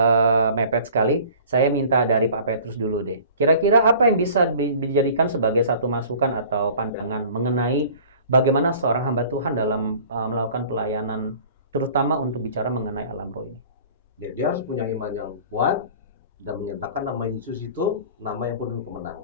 mepet sekali. Saya minta dari Pak Petrus dulu deh. Kira-kira apa yang bisa dijadikan sebagai satu masukan atau pandangan mengenai bagaimana seorang hamba Tuhan dalam melakukan pelayanan, terutama untuk bicara mengenai alam roh ini? Ya, dia harus punya iman yang kuat dan menyatakan nama Yesus itu nama yang penuh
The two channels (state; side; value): inverted; both; correlation -0.46